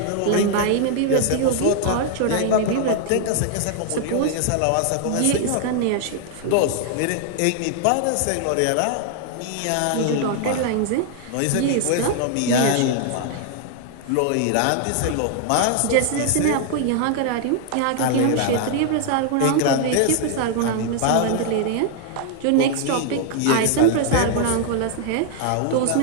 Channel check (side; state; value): both; different; correlation 0.00